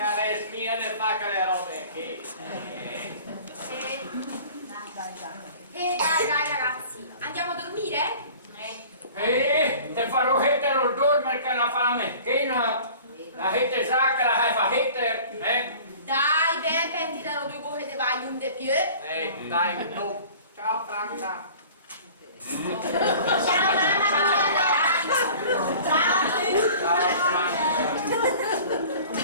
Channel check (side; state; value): both; inverted; correlation -0.45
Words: smiene fa che le robe che... Dai ragazzi, andiamo a dormire? Te farò hettere il dormire che la fa la mecchina. La hette sa che la fa hettere, Dai, ben pensi dalle due cose di vai un de più. Dai, no. Ciao Franca. Ciao mamma,